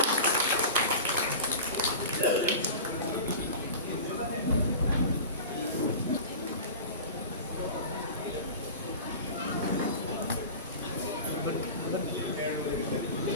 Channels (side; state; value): both; inverted; correlation -0.33